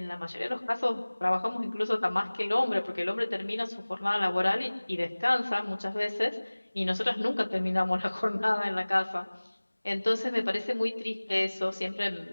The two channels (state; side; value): inverted; both; correlation -1.00